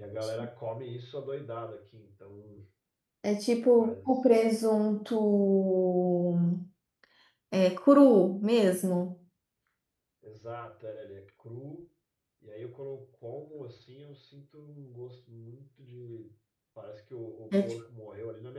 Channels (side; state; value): both; identical; correlation 1.00